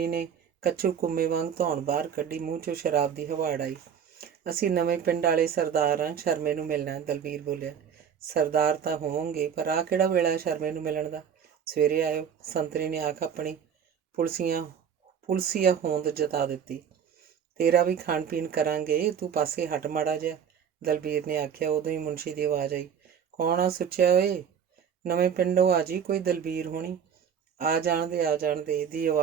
ਨੇ ਕੱਚੂ ਕੁੰਮੇ ਵਾਂਗ ਧੌਣ ਬਾਹਰ ਕੱਢੀ। ਮੂੰਹ 'ਚੋਂ ਸ਼ਰਾਬ ਦੀ ਹਵਾੜ ਆਈ। ਅਸੀਂ ਨਵੇਂ ਪਿੰਡ ਵਾਲੇ ਸਰਦਾਰ ਹਾਂ, ਸ਼ਰਮੇ ਨੂੰ ਮਿਲਣਾ, ਦਲਬੀਰ ਬੋਲਿਆ। ਸਰਦਾਰ ਤਾਂ ਹੋਵੋਗੇ, ਪਰ ਆਹ ਕਿਹੜਾ ਵੇਲਾ ਹੈ ਸ਼ਰਮੇ ਨੂੰ ਮਿਲਣ ਦਾ? ਸਵੇਰੇ ਆਇਓ, ਸੰਤਰੀ ਨੇ ਆਖ ਆਪਣੀ ਪੁਲਸੀਆ ਹੋਂਦ ਜਤਾ ਦਿੱਤੀ। ਤੇਰਾ ਵੀ ਖਾਣ ਪੀਣ ਕਰਾਂਗੇ, ਤੂੰ ਪਾਸੇ ਹਟ ਮਾੜਾ ਜਿਹਾ, ਦਲਬੀਰ ਨੇ ਆਖਿਆ। ਉਦੋਂ ਹੀ ਮੁਨਸ਼ੀ ਦੀ ਆਵਾਜ਼ ਆਈ, ਕੌਣ ਆ ਸੁੱਚਿਆ ਓਏ? ਨਵੇਂ ਪਿੰਡੋਂ ਆ ਜੀ ਕੋਈ ਦਲਬੀਰ ਹੋਣੀ। ਆ ਜਾਣ ਦੇ ਦੀ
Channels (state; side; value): quieter; left; 7.8 dB